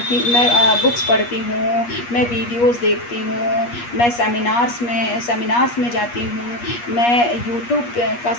हूँ, मैं वीडियोज़ देखती हूँ, मैं सेमिनार्स में जाती हूँ, मैं यूट्यूब का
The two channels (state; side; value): late; right; 8.4 ms